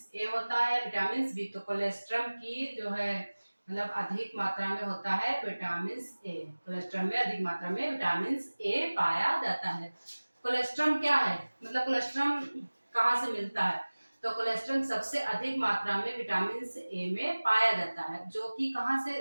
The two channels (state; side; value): inverted; both; correlation -1.00